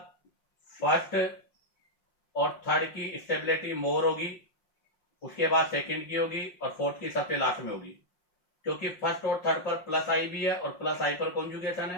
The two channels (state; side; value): late; right; 5.6 ms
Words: फर्स्ट और थर्ड की स्टेबिलिटी मोर होगी, उसके बाद सेकंड की होगी और फोर्थ की सबसे लास्ट में होगी, क्योंकि फर्स्ट और थर्ड पर प्लस आई भी है और प्लस आई पर कॉन्जुगेशन